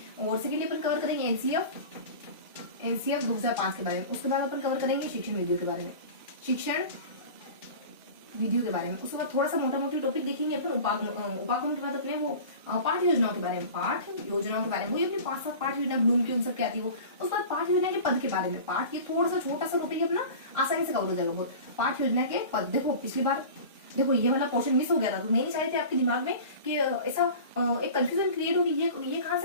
और सेकेंडली अपन कवर करेंगे एनसीएफ 2005 के बारे में। उसके बाद अपन कवर करेंगे शिक्षण विधियों के बारे में, शिक्षण विधियों के बारे में। उसके बाद थोड़ा सा मोटा मोटी टॉपिक देखेंगे अपन उपागम के बाद अपने वो पाठ योजनाओं के बारे में, वही अपनी 5-7 पाठ योजना ब्लूम की उन सब की आती है वो। उसके बाद पाठ योजना के पद के बारे में, पाठ ये थोड़ा सा छोटा सा टॉपिक अपना आसानी से कवर हो जाएगा बहुत। पाठ योजना के पद, देखो पिछली बार देखो ये वाला पोर्शन मिस हो गया था, तो मैं नहीं चाह रही थी आपके दिमाग में कि ऐसा एक कंफ्यूजन क्रिएट होगी, ये कहां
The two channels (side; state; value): both; inverted; correlation -0.37